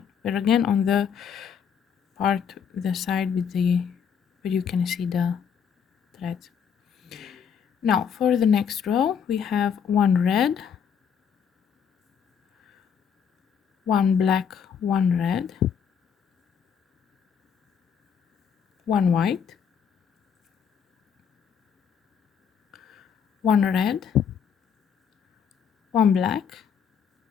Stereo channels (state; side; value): quieter; right; 7.4 dB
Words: But again, on the part, the side with the, where you can see the threads. Now for the next row, we have 1 red, 1 black, 1 red, 1 white, 1 red, 1 black,